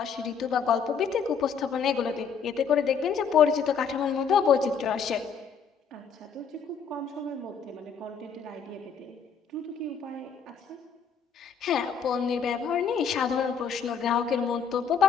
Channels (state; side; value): quieter; right; 6.4 dB